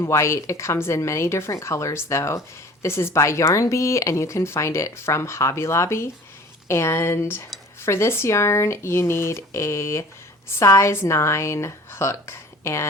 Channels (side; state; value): both; normal; correlation 0.45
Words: white. It comes in many different colors though. This is by Yarn Bee, and you can find it from Hobby Lobby. And for this yarn, you need a size 9 hook,